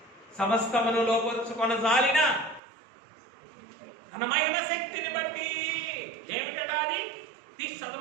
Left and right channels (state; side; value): drops out; left; at 2.6 s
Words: సమస్తమును లోపరుచుకొన జాలిన తన మహిమ శక్తిని బట్టి, ఏమిటట అది తీసి